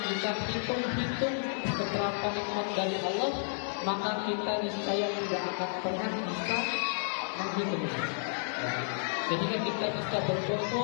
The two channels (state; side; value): silent; right; digital silence